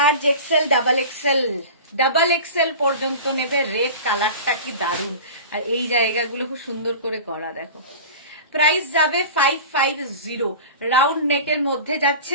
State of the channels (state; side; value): inverted; both; correlation -0.35